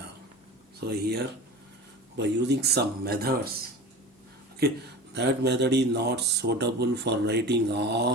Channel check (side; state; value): both; normal; correlation 0.33